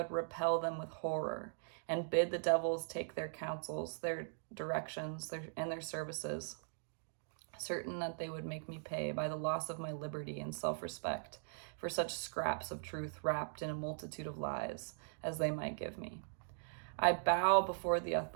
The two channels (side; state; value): left; silent; digital silence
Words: repel them with horror, and bid the devils take their counsels, their directions, and their services, certain that they would make me pay by the loss of my liberty and self-respect for such scraps of truth wrapped in a multitude of lies as they might give me. I bow before the